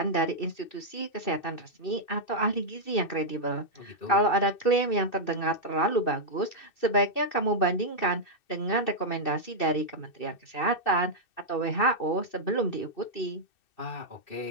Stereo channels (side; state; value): right; late; 2.6 ms